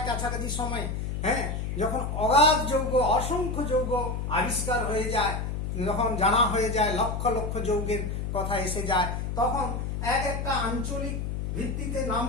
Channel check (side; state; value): left; noise; hum, 3 dB below the sound